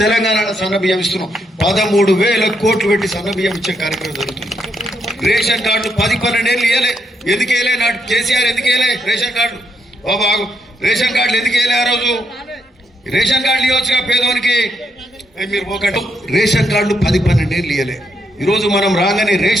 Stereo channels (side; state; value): both; normal; correlation 0.78